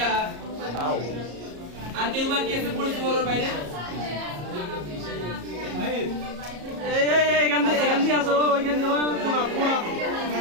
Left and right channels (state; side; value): late; left; 34 ms